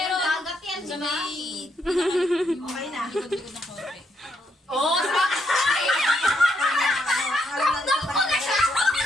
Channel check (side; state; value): both; normal; correlation 0.76